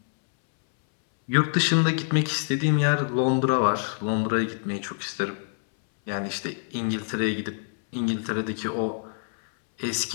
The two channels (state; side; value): silent; right; 61 dB below the other